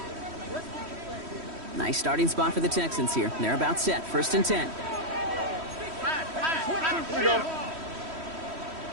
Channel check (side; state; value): left; late; 3.1 ms